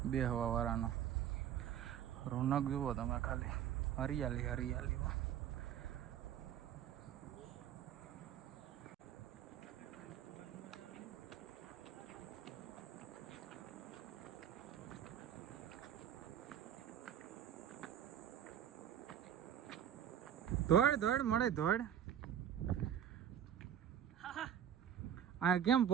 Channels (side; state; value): left; quieter; 9.9 dB